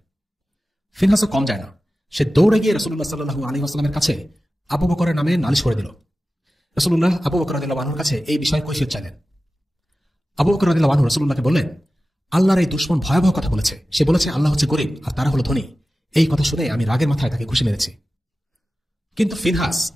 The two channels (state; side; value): normal; both; correlation 0.95